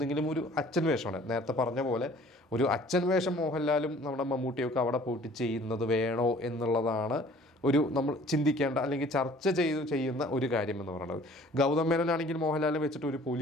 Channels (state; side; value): normal; both; correlation 0.52